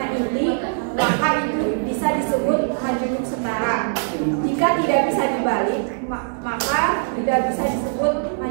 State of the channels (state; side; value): silent; left; digital silence